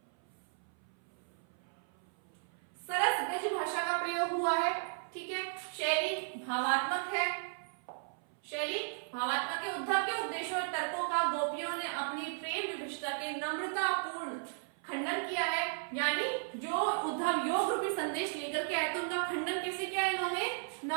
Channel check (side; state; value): left; silent; 54 dB below the other